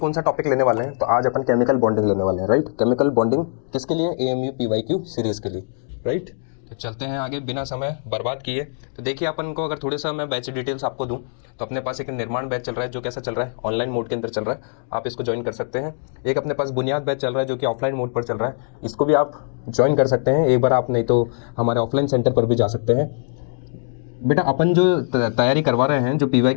सा टॉपिक लेने वाले हैं? तो आज अपन केमिकल बॉन्डिंग लेने वाले हैं, राइट। केमिकल बॉन्डिंग किसके लिए? AMU PYQ सीरीज के लिए, राइट। तो चलते हैं आगे बिना समय बर्बाद किए। तो देखिए, अपन को अगर थोड़े सा मैं बैच डिटेल्स आपको दूं तो अपने पास एक निर्माण बैच चल रहा है जो कैसा चल रहा है, ऑनलाइन मोड के अंदर चल रहा है। आप इसको ज्वाइन कर सकते हैं। एक अपने पास बुनियाद बैच चल रहा है जो कि ऑफलाइन मोड पर चल रहा है, इसको भी आप ज्वाइन कर सकते हैं। एक बार आप नहीं तो हमारे ऑफलाइन सेंटर पर भी जा सकते हैं। बेटा, अपन जो तैयारी करवा रहे हैं, जो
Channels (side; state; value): right; silent; digital silence